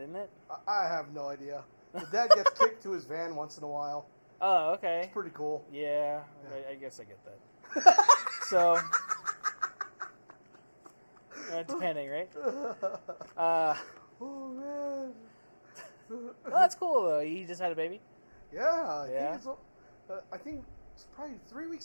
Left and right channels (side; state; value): both; inverted; correlation -1.00